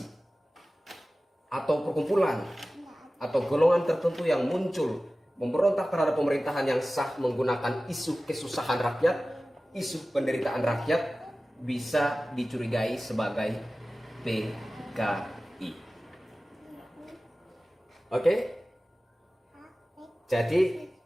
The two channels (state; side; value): normal; both; correlation 0.96